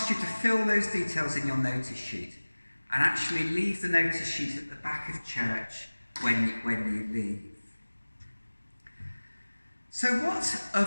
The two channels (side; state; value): both; inverted; correlation -1.00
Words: you to fill those details in your notice sheet, and actually leave the notice sheet at the back of church when you leave. So what